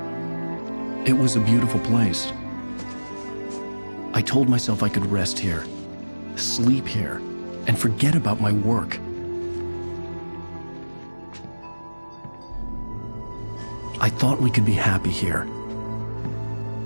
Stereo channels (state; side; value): inverted; both; correlation -1.00